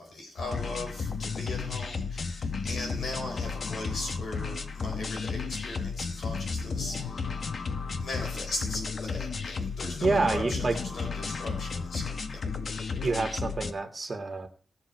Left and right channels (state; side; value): normal; both; correlation 0.83